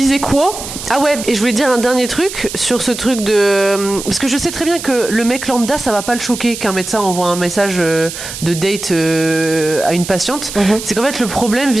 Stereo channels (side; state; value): right; noise; hiss, 9 dB below the sound